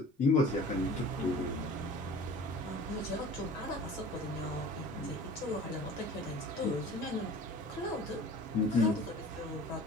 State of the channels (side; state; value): both; normal; correlation 0.43